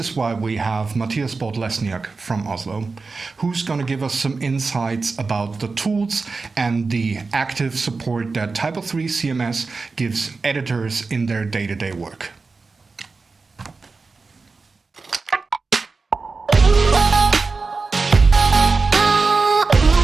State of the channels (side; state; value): left; quieter; 4.2 dB